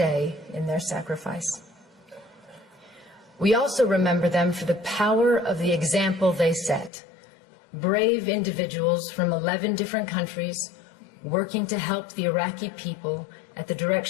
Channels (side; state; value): right; drops out; at 6.9 s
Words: in their sacrifice. We also remember them for the power of the example they set. Brave individuals from 11 different countries working to help the Iraqi people at the